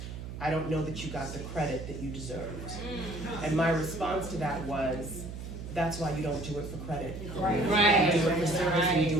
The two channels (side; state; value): right; noise; hum, 9 dB below the sound